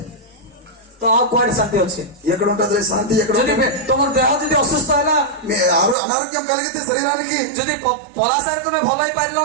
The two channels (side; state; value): left; drops out; at 6.0 s